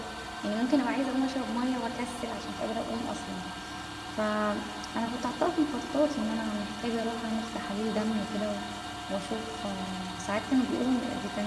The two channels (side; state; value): both; identical; correlation 1.00